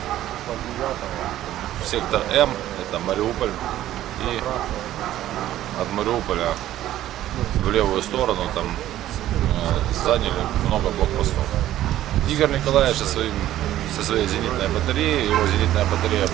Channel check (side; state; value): left; quieter; 13.3 dB